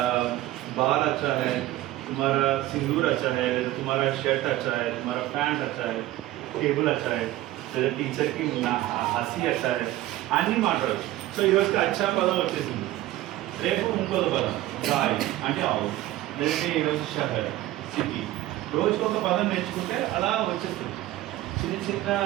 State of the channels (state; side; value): quieter; left; 15.7 dB